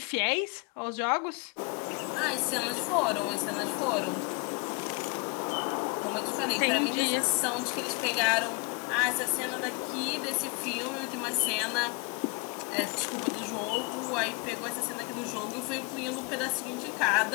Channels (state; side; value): quieter; right; 29.7 dB